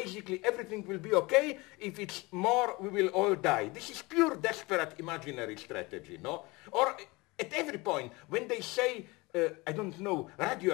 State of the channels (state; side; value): quieter; right; 23.9 dB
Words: everything will be okay. If it's more, we will all die. This is pure desperate imaginary strategy, no? Or at every point, when they say,